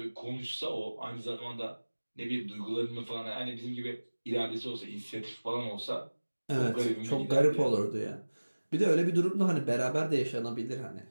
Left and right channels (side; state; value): both; inverted; correlation -1.00